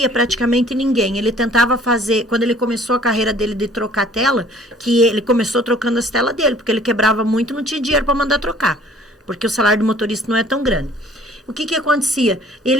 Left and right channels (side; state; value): both; normal; correlation 0.54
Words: praticamente ninguém. Ele tentava fazer, quando ele começou a carreira dele de trocar tela, que ele começou trocando as telas dele, porque ele quebrava muito, não tinha dinheiro para mandar trocar, porque o salário do motorista não é tão grande. O que acontecia?